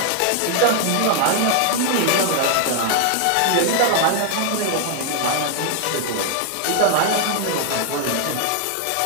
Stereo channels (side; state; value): both; different; correlation 0.00